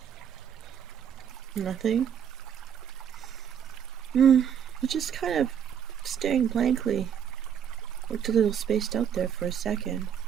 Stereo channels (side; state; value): left; quieter; 8.4 dB